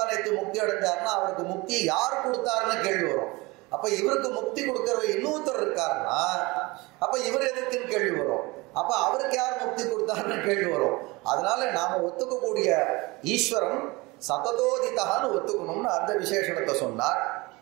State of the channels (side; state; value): left; quieter; 23.6 dB